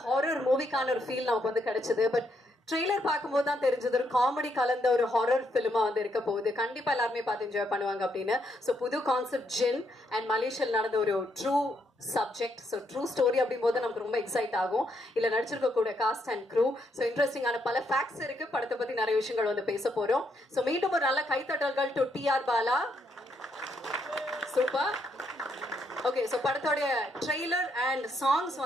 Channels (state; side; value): normal; both; correlation 0.75